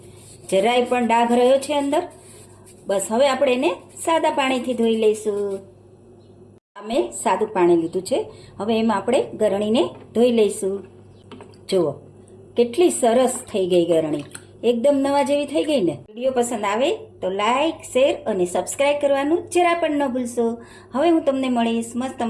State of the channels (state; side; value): identical; both; correlation 1.00